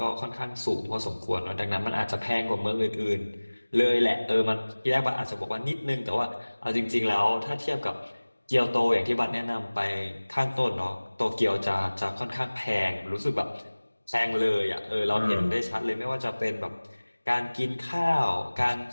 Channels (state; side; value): inverted; both; correlation -1.00